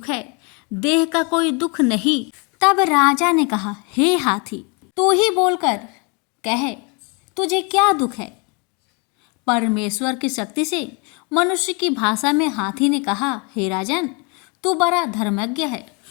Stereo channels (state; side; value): quieter; right; 32.9 dB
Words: है, देह का कोई दुख नहीं। तब राजा ने कहा, हे हाथी, तू ही बोलकर कहे, तुझे क्या दुख है। परमेश्वर की शक्ति से मनुष्य की भाषा में हाथी ने कहा, हे राजन, तू बड़ा धर्मज्ञ है